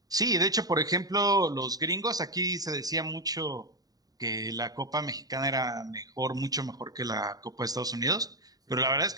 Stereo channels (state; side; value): late; left; 0.18 ms